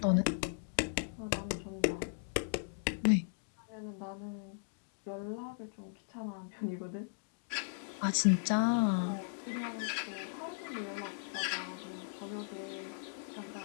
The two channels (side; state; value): right; silent; digital silence